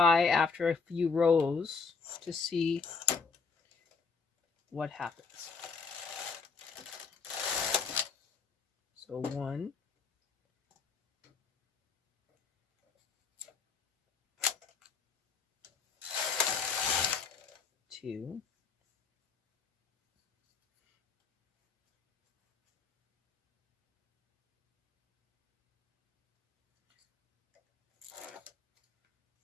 after a few rows to see what happens. So 1, 2,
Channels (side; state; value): right; quieter; 5.2 dB